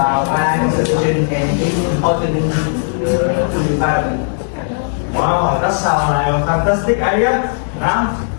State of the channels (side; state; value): right; silent; digital silence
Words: wildlife conservation and its importance to the environment. Wow, that sounds like a fantastic idea. Now,